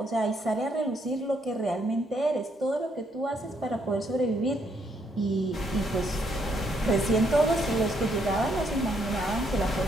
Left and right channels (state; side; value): normal; both; correlation 0.72